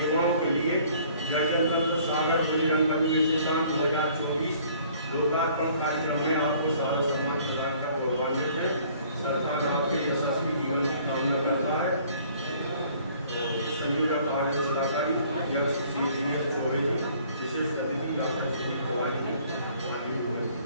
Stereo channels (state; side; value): inverted; both; correlation -0.57